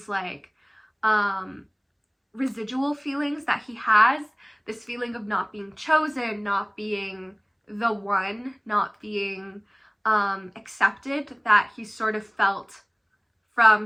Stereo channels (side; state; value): both; identical; correlation 1.00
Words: like residual feelings that he has, this feeling of not being chosen, not being the one, not being accepted, that he sort of felt from